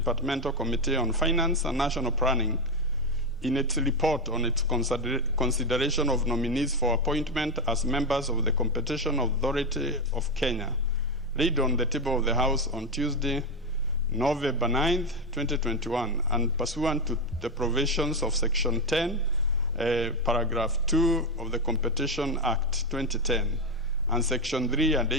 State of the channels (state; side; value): normal; both; correlation 0.10